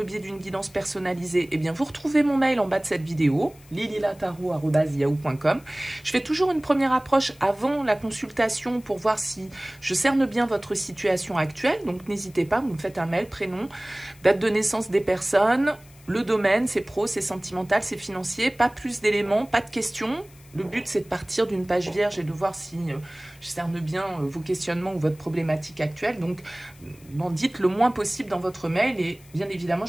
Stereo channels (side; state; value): left; noise; hiss, 26 dB below the sound